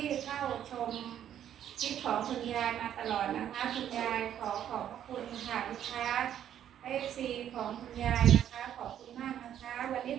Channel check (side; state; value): left; quieter; 10.3 dB